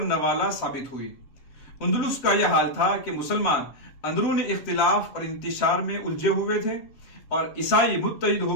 ثابت ہوئی، اندلس کا یہ حال تھا کہ مسلمان اندرون اختلاف اور انتشار میں الجھے ہوئے تھے اور عیسائی متحد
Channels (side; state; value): right; late; 7.9 ms